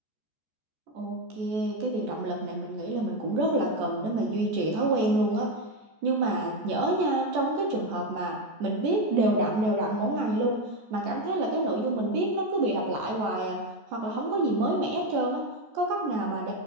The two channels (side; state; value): left; late; 14 ms